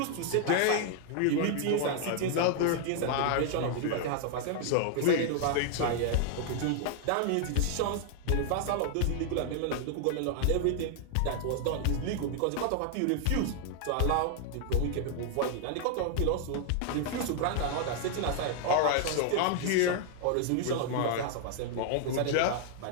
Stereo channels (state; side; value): different; both; correlation 0.00